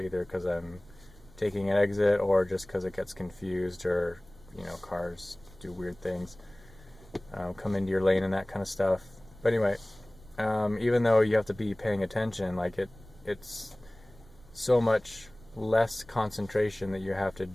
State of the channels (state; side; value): noise; right; rumble, 23 dB below the sound